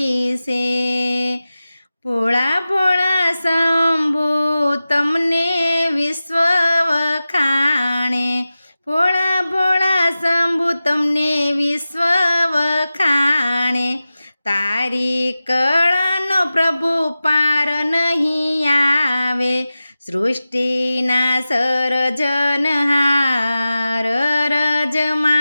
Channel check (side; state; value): both; inverted; correlation -0.95